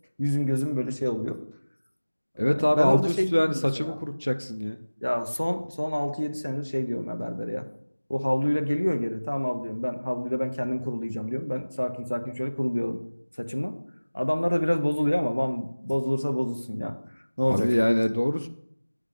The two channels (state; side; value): inverted; both; correlation -1.00